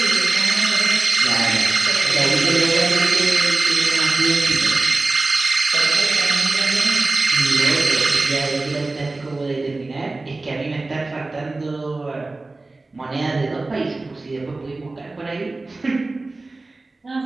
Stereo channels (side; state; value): left; quieter; 3.3 dB